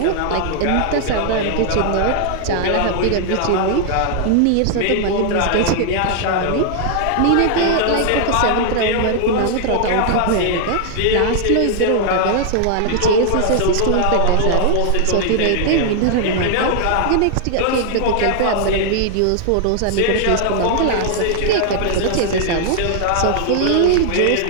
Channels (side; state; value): both; different; correlation 0.00